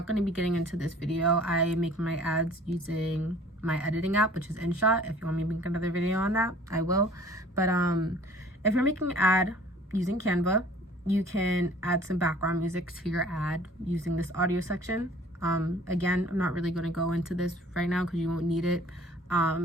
going to be getting into this video. I make my ads using my editing app, which is InShot. If you want me to make another video on that, I will. But if you're making an ad using Canva, you can add some background music to your ad using this audio section. Again, I'm not really going to go into this right now because you won't need it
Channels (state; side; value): normal; both; correlation 0.51